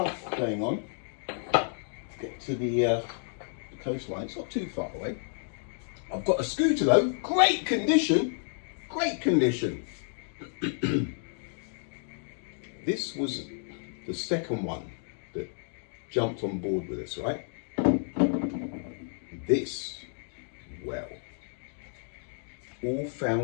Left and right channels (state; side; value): silent; right; digital silence